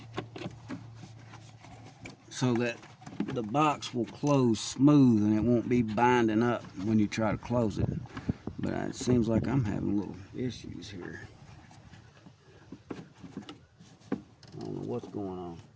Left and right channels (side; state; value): both; identical; correlation 1.00